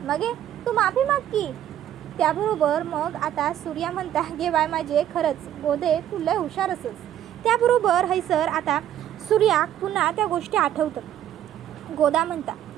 मगे तू माफी माग की. त्याबरोबर मग आता सूर्या म्हणता, गे बाय माझे खरंच गोदे तू लय हुशार असस. त्याबरोबर हैसर आता सूर्या पुन्हा त्या गोष्टी आठवतं. गोदा म्हणता,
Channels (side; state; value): left; quieter; 11.2 dB